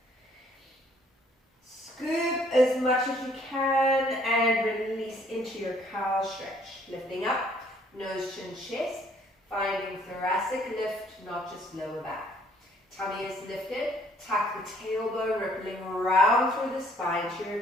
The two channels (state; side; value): normal; both; correlation 0.62